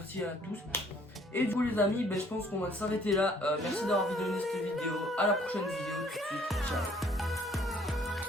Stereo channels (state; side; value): normal; both; correlation 0.60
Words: à tous. Et du coup les amis, je pense qu'on va s'arrêter là. Merci d'avoir visionné cette vidéo, à la prochaine vidéo tout de suite, ciao.